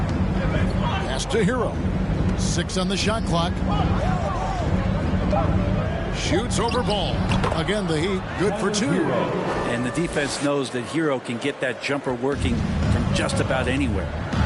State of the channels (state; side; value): identical; both; correlation 1.00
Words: To Hero. 6 on the shot clock. Shoots over Ball. Again, the Heat good for 2. And the defense knows that Hero can get that jumper working from just about anywhere.